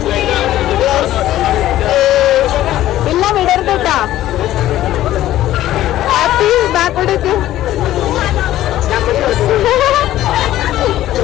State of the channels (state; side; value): quieter; right; 13.9 dB